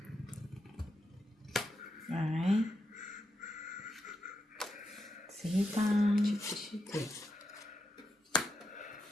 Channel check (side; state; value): both; normal; correlation 0.84